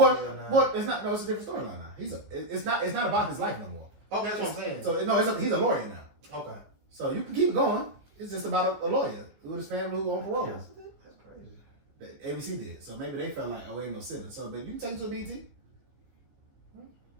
It's not. No, it's a different storyline now. It's not about his life no more. Okay, that's what I'm saying. So no, he's a lawyer now. Okay. So you can keep going. It's just about a lawyer with his family who on parole. That's crazy. ABC did. So maybe they felt like, oh, ain't no sitting. So, but you can take it to a BT.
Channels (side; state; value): left; late; 15 ms